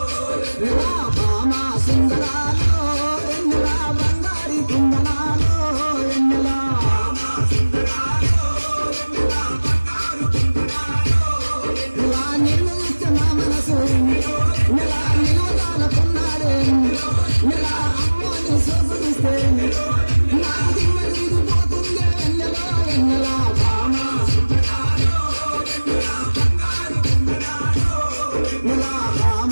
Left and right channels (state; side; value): inverted; both; correlation -1.00